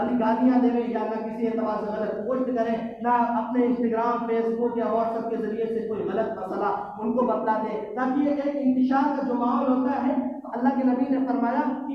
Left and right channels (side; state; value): both; identical; correlation 1.00